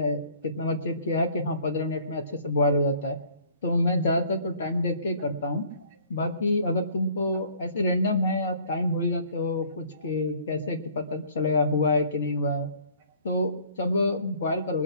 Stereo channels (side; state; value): both; inverted; correlation -0.55